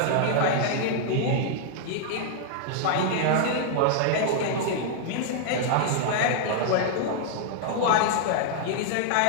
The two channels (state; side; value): different; both; correlation -0.01